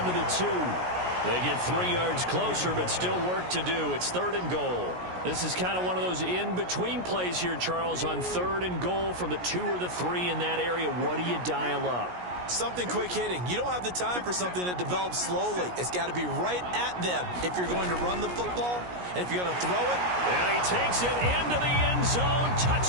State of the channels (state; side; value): late; left; 17 ms